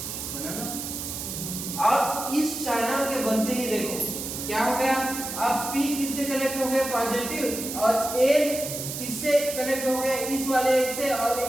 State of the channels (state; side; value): noise; right; hiss, 6 dB below the sound